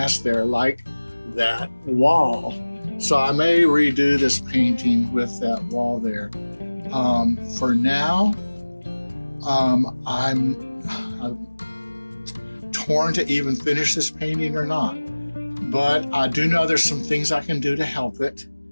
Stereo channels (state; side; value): inverted; both; correlation -1.00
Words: there, like that wall. So I may redo this painting with that wall there. For now, I'm torn to even finish this painting or not. But I do know there's some things I can do to help it.